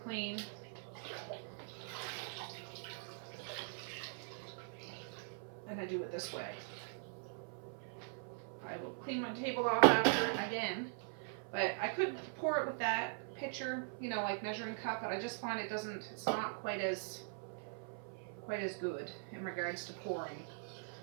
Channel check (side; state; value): left; silent; 50 dB below the other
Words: clean. And I do it this way. I will clean my table off after again, but I could pour it with that pitcher, you know, like measuring cup, but I just find it's not quite as good in regards to pouring.